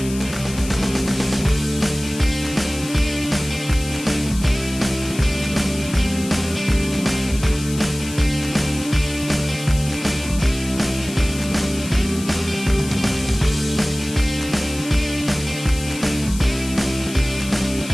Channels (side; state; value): left; noise; hiss, 13 dB below the sound